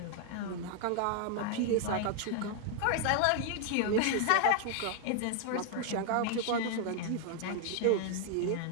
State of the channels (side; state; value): both; different; correlation 0.00